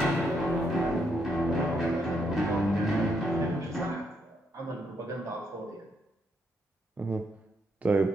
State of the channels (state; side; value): normal; both; correlation 0.76